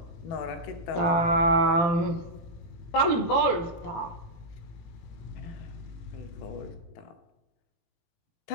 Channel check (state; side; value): late; right; 18 ms